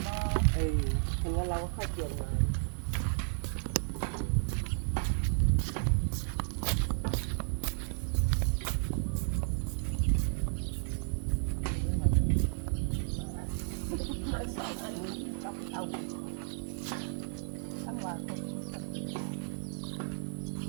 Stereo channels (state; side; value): silent; left; digital silence